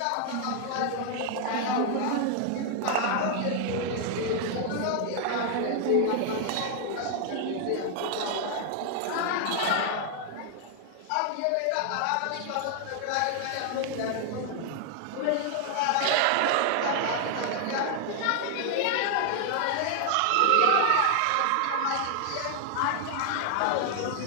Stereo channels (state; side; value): different; both; correlation 0.00